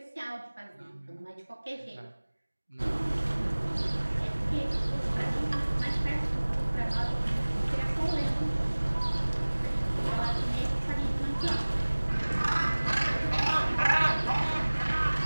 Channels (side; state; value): both; inverted; correlation -1.00